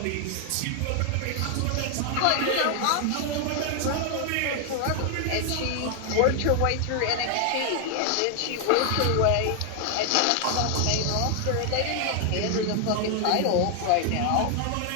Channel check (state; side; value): different; both; correlation 0.00